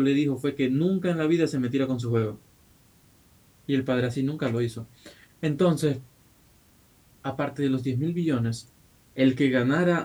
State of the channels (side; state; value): both; identical; correlation 1.00